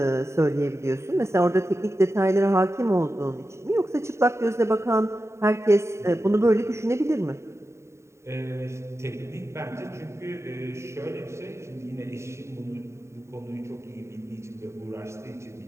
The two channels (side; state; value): left; late; 0.13 ms